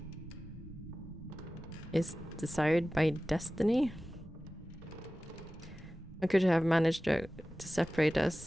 destiny. I could have managed to separate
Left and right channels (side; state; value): both; normal; correlation 0.96